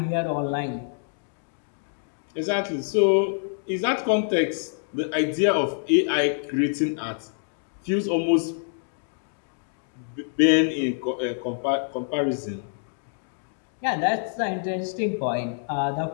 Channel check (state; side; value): silent; right; digital silence